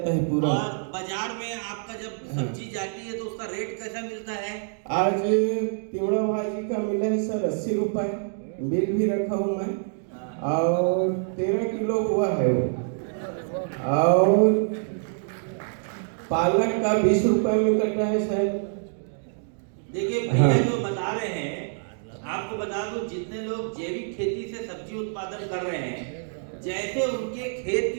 है पूरा। और बाजार में आपका जब सब्जी जाती है तो उसका रेट कैसा मिलता है? आज तिवड़ा भाजी का मिला है सर 80 रुपए, बिल भी रखा हूँ मैं, और 13 किलो हुआ है वो। और पालक का 20 रुपए में कटा है सर। देखिए भैया जो बता रहे हैं, आपको बता दूं, जितने लोग जैविक खेती से सब्जी उत्पादन कर रहे हैं, जैसे उनके खेत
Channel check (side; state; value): left; silent; digital silence